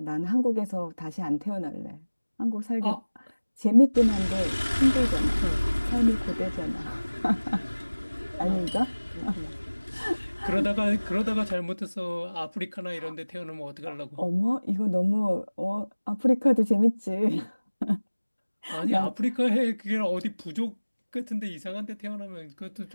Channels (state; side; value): inverted; both; correlation -1.00